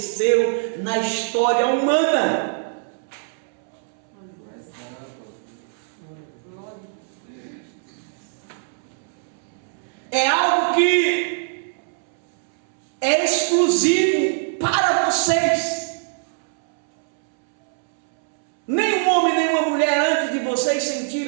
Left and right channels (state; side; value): silent; left; 64 dB below the other